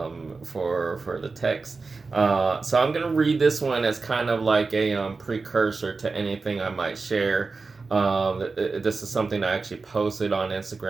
for the text. So I'm gonna read this one as kind of like a precursor to anything I might share This is something I actually posted on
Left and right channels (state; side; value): quieter; left; 4.2 dB